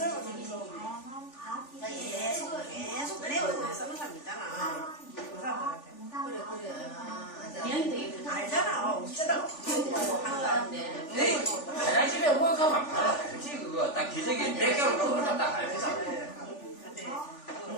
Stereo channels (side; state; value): right; late; 3.4 ms